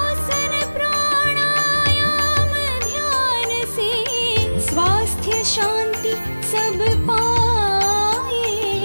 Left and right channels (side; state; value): both; inverted; correlation -1.00